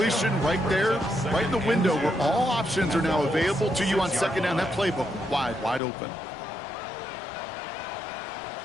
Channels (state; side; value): drops out; right; at 5.8 s